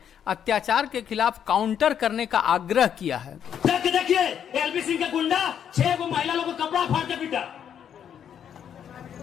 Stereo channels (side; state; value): right; quieter; 8.8 dB